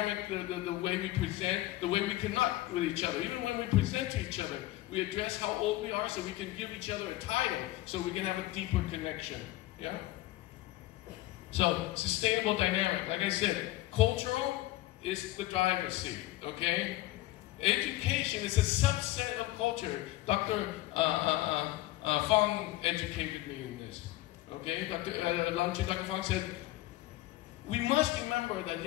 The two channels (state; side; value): quieter; right; 16.8 dB